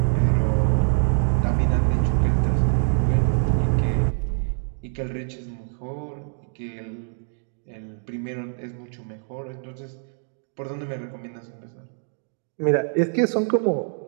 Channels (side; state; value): left; silent; 62 dB below the other